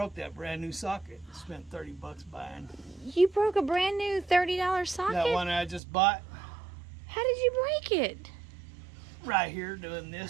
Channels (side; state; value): left; drops out; at 5.8 s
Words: that brand new socket. Spent $30 buying. You broke a brand new $30 socket? That one I just bought. How did you break it? Right here doing